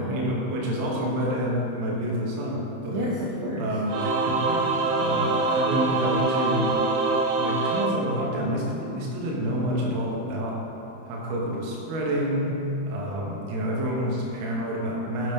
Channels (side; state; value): left; late; 31 ms